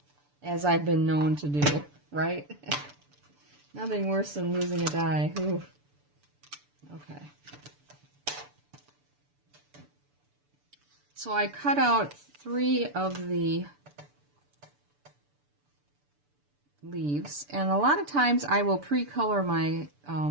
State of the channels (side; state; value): left; late; 6.9 ms